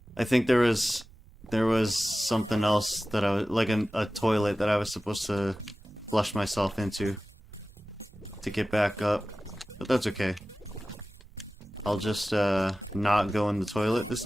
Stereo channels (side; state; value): right; noise; rumble, 22 dB below the sound